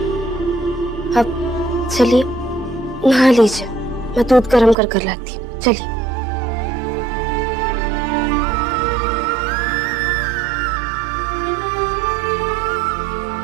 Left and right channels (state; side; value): drops out; left; at 4.8 s